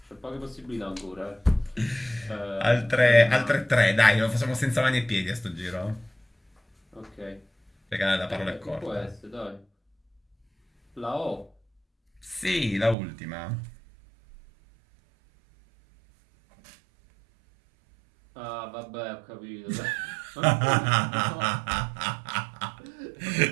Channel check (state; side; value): drops out; left; at 13.0 s